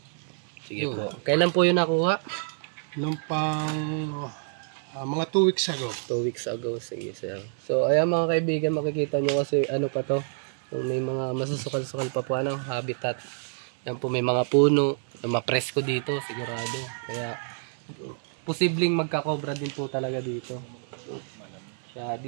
Sige po. Kailan po yung nakuha? Nung pang mga 2 weeks ago. 2 weeks ago. Sige, Sir. So ayan mga kaibigan, makikita nyo kasi pa to. Kung may mga masusukal-sukal pa po habitat. Yan po may mga puno. Yung mapresko dito, sigurado. Kaya posibleng magka-cobra din po talaga dito. Kaya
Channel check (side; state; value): left; silent; 60 dB below the other